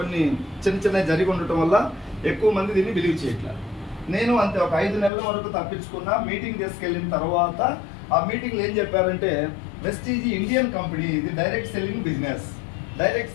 చిన్న జరిగి ఉండటం వల్ల ఎక్కువ మంది దీన్ని బిలీవ్ చేయట్లేదు. నేను అంతే ఒక 5 నెలల వరకు తప్పించుకున్నా. మీటింగ్ తీసుకెళ్ళిన తర్వాత ఆ మీటింగ్లో ఏం చెప్పారంటే, వెస్టీజ్ ఇండియన్ కంపెనీ, ఇది direct selling business.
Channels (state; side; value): drops out; right; at 5.1 s